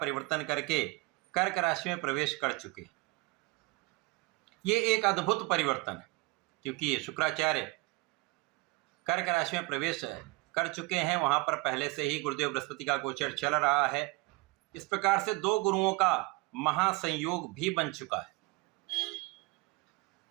करके कर्क राशि में प्रवेश कर चुके। ये एक अद्भुत परिवर्तन है क्योंकि शुक्राचार्य कर्क राशि में प्रवेश कर चुके हैं। वहां पर पहले से ही गुरुदेव बृहस्पति का गोचर चल रहा है। इस प्रकार से दो गुरुओं का महासंयोग भी बन चुका है।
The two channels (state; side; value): quieter; left; 23.8 dB